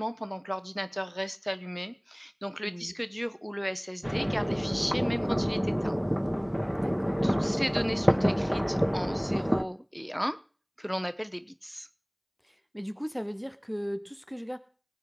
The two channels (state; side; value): identical; both; correlation 1.00